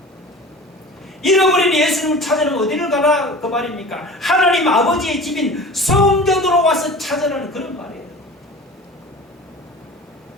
잃어버린 예수님을 찾으려면 어디를 가라 그 말입니까? 하나님 아버지의 집인 성전으로 와서 찾으라는 그런 말이에요.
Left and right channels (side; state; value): both; normal; correlation 0.39